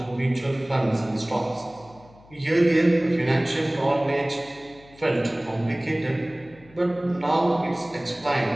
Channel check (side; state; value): left; noise; hum, 25 dB below the sound